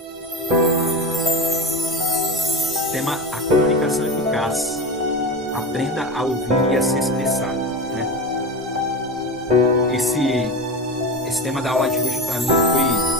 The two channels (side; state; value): both; normal; correlation 0.24